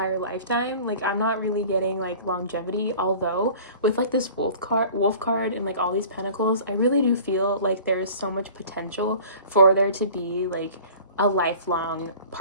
lifetime. Like, I'm not really getting, like, longevity, although with, like, this wolf card and, like, all these pentacles, I really do feel like there's so much potential for there to be, like, a lifelong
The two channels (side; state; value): both; inverted; correlation -0.44